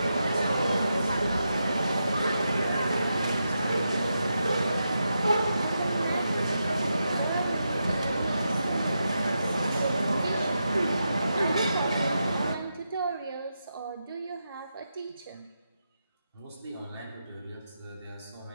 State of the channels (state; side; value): inverted; both; correlation -0.86